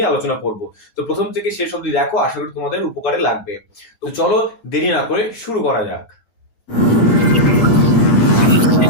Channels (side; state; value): right; late; 8.5 ms